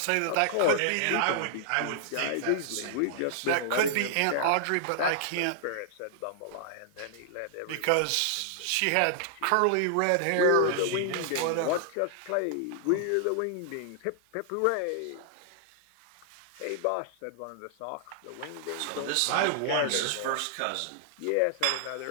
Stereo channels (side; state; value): both; different; correlation -0.01